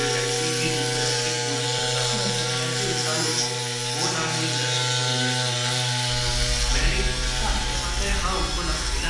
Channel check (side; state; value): both; identical; correlation 1.00